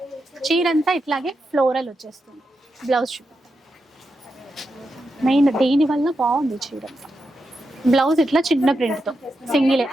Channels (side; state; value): both; normal; correlation 0.87